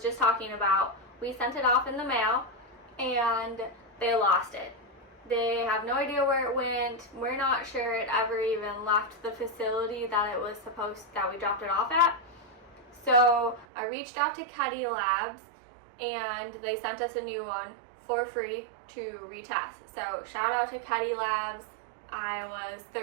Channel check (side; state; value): left; drops out; at 13.7 s